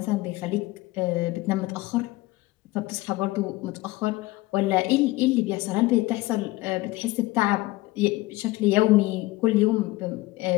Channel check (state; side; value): quieter; right; 19.5 dB